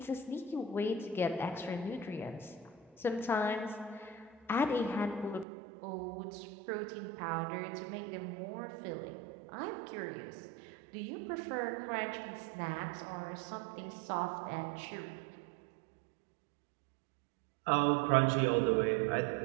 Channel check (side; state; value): left; drops out; at 5.5 s